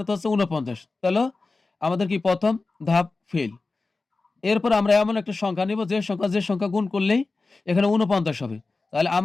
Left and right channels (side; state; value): right; quieter; 3.7 dB